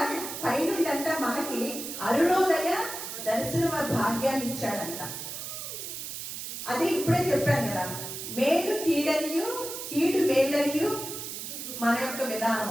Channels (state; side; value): noise; right; hiss, 7 dB below the sound